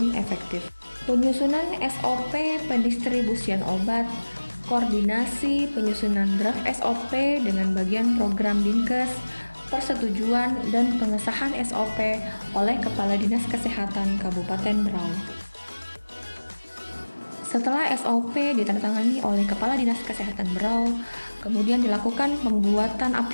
efektif, penyusunan SOP pendistribusian obat, koordinasi penyusunan draft SOP dengan bagian program Dinkes, persetujuan dan pengesahan SOP oleh Kepala Dinas Kesehatan Kabupaten Berau. Setelah SOP ditandatangani oleh Kepala Dinas Kesehatan Berau, kemudian dilakukan pembuatan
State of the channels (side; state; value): both; inverted; correlation -1.00